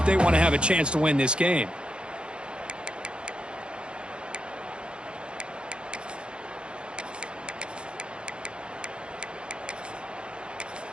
they want to have a chance to win this game.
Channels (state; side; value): late; left; 0.054 ms